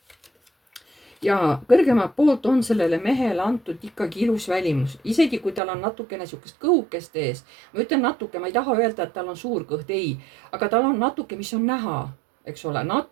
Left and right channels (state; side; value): drops out; left; at 5.6 s